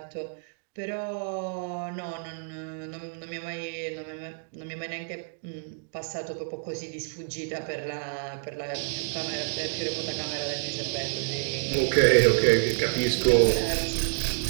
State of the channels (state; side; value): silent; left; 59 dB below the other